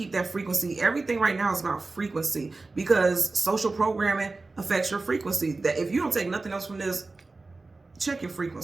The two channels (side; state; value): left; quieter; 3.5 dB